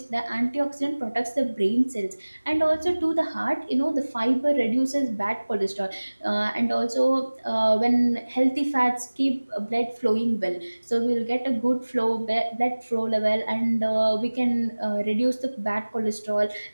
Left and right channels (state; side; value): inverted; both; correlation -1.00